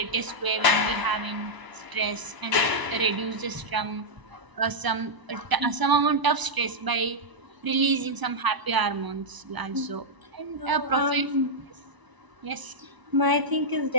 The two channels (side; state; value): left; late; 1.0 ms